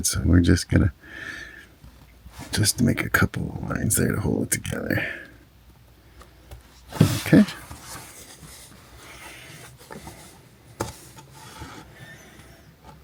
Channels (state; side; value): identical; both; correlation 1.00